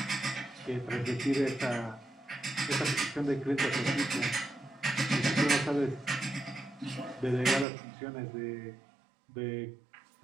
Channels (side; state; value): left; drops out; at 7.7 s